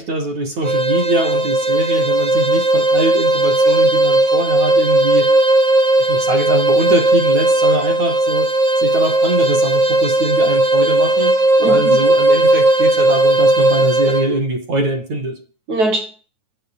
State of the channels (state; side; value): late; left; 9.3 ms